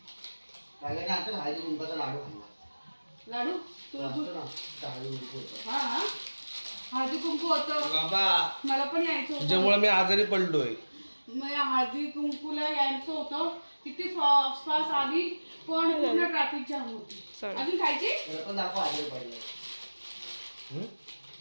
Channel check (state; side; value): inverted; both; correlation -1.00